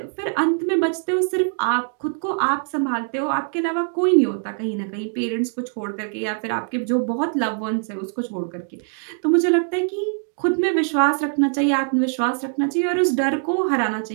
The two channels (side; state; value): left; silent; 58 dB below the other